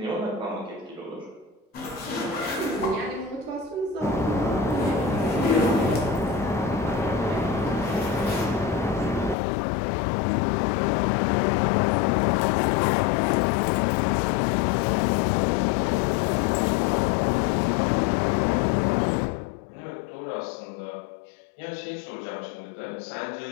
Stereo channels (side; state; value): right; drops out; at 9.3 s